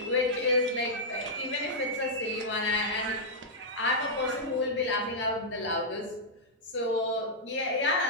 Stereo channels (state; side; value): normal; both; correlation -0.08